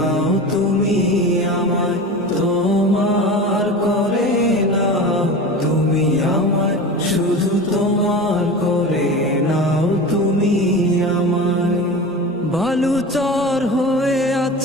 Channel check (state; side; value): normal; both; correlation 0.31